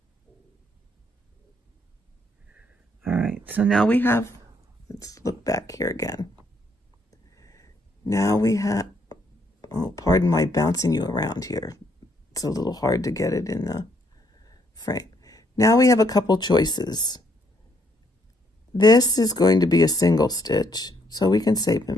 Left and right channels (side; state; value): both; normal; correlation 0.70